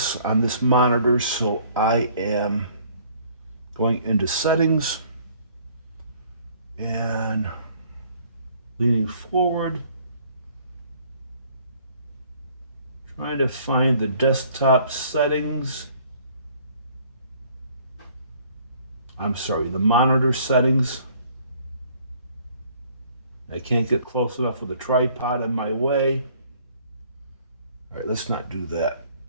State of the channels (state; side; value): inverted; both; correlation -0.58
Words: on this monitor, so I am going into settings and leaning forward, trying to find the desktop settings. I'm sorry, the monitor settings. I can't get close enough with a tripod in my way. All right, let's not do that.